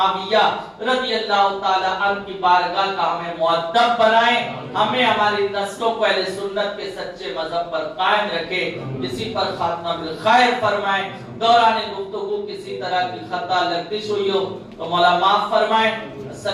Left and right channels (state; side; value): identical; both; correlation 1.00